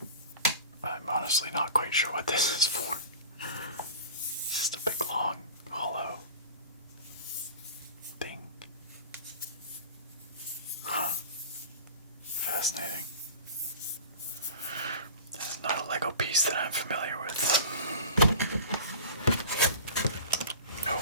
I'm honestly not quite sure what this is for. It's just a big long hollow thing. Huh. Fascinating. This is not a Lego piece that I'm familiar with. Oh.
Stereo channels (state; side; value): inverted; both; correlation -0.36